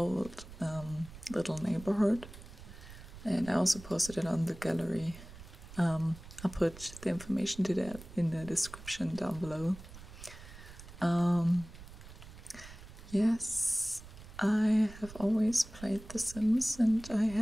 little neighborhood. And I also posted it on the gallery. I'll put the information to that in the description down below. Yes, I have always played The Sims, and I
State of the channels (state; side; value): noise; right; rumble, 16 dB below the sound